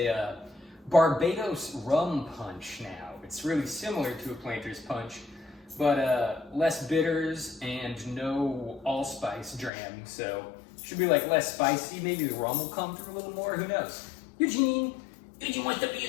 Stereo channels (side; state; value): right; drops out; at 9.7 s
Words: Barbados Rum Punch now. It's really similar to a Planters Punch, but less bitters and no allspice dram, so should be like less spicy. Maybe the rum will come through a little more, who knows? Eugene wants to be